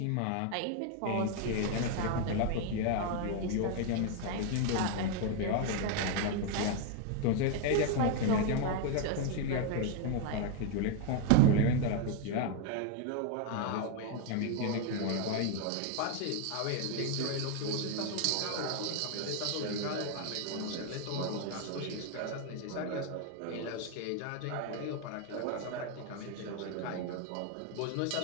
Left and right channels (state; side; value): different; both; correlation 0.01